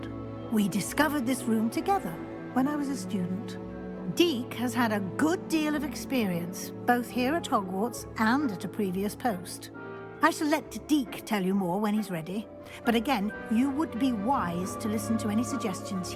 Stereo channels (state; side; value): identical; both; correlation 1.00